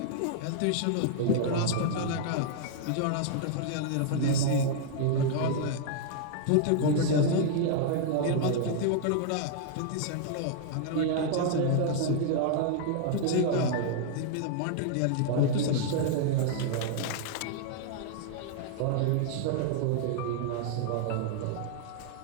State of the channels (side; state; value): both; different; correlation -0.01